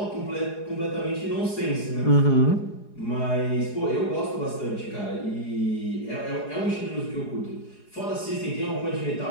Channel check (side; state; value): right; late; 4.8 ms